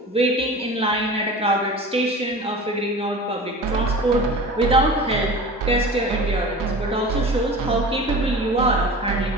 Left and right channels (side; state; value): both; normal; correlation 0.36